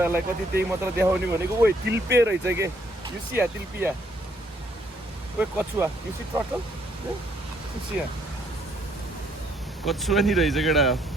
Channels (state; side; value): normal; both; correlation 0.68